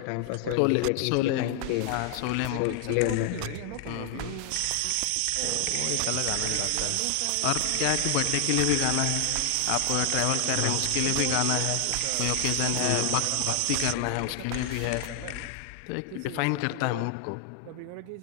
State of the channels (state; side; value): different; both; correlation 0.00